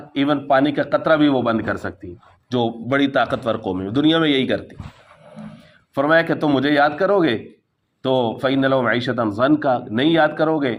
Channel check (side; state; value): both; identical; correlation 1.00